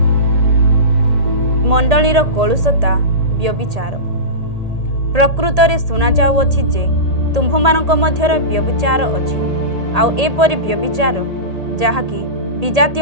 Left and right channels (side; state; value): left; late; 1.8 ms